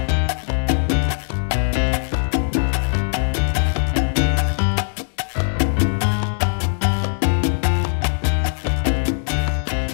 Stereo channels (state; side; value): silent; right; digital silence